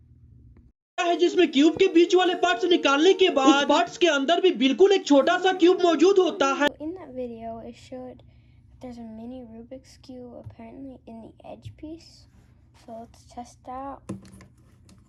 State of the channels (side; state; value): both; identical; correlation 1.00